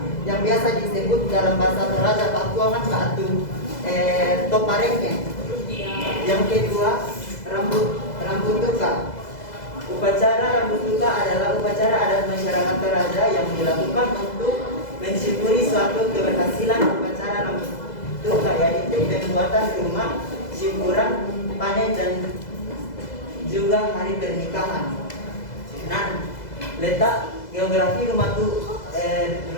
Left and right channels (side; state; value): right; late; 2.0 ms